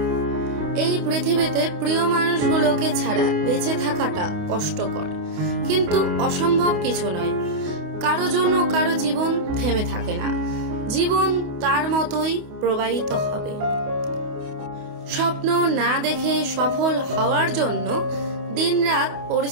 এই পৃথিবীতে প্রিয় মানুষগুলোকে ছাড়া বেঁচে থাকাটা কষ্টকর, কিন্তু অসম্ভব কিছু নয়। কারো জন্য কারো জীবন থেমে থাকে না, জীবন তার মতোই প্রবাহিত হবে। স্বপ্ন না দেখে সফল হওয়ার জন্য দিনরাত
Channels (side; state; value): left; late; 28 ms